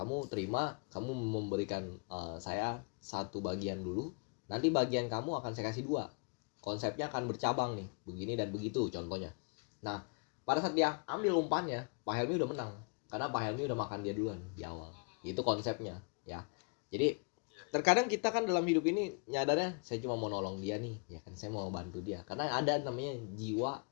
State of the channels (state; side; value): quieter; right; 34.7 dB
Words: terima, kamu memberikan saya satu bagian dulu, nanti bagian kamu akan saya kasih dua. Konsepnya akan bercabang nih, begini dan begitu contohnya. Nah, pada saat dia ambil umpannya, Pak Helmi udah menang, karena Pak Helmi udah makan dia duluan di awal. Itu konsepnya, ya. Jadi terkadang kita kan dalam hidup ini nyadarnya saya cuma mau nolong dia nih, ya kan, saya mau bantu dia, karena ada namanya jiwa